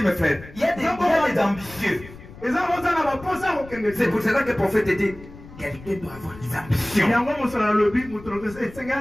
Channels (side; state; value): left; noise; rumble, 18 dB below the sound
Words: mes frères, il y a des ambitieux. C'est pour cela que le prophète dit, quelqu'un doit avoir des ambitions.